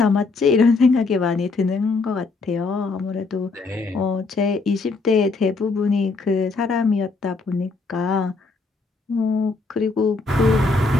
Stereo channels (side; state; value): right; quieter; 3.8 dB